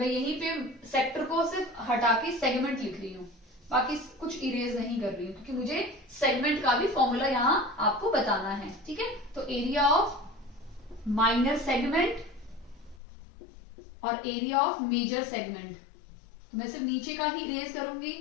यहीं पे सेक्टर को सिर्फ हटा के सेगमेंट लिख रही हूं, बाकी कुछ इरेज नहीं कर रही हूं क्योंकि मुझे सेगमेंट का भी फॉर्मूला यहां आपको बताना है, ठीक है। तो एरिया ऑफ माइनर सेगमेंट और एरिया ऑफ मेजर सेगमेंट, तो मैं सिर्फ नीचे का ही इरेज करूंगी,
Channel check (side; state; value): right; drops out; at 13.0 s